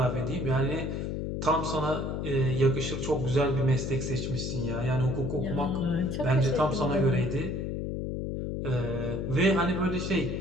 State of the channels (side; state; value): left; noise; hum, 3 dB below the sound